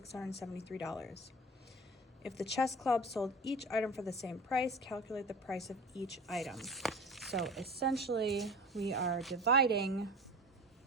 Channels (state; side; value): normal; both; correlation 0.36